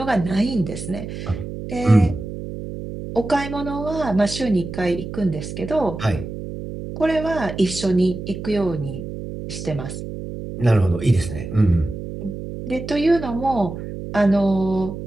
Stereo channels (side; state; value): right; noise; hum, 8 dB below the sound